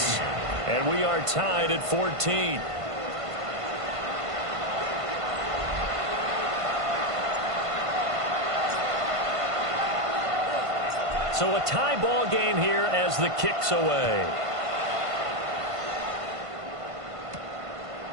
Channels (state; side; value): late; left; 1.5 ms